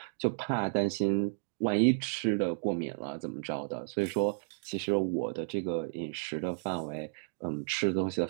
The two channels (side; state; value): left; silent; digital silence